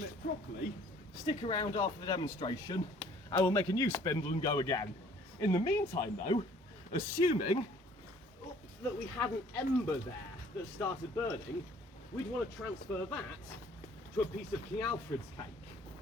properly, stick around after the demonstration. I will make a new spindle and go again. In the meantime though, assuming that we had an ember there that started burning, we'd want to transfer that to a piece of King Alfred's cake.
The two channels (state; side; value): normal; both; correlation 0.56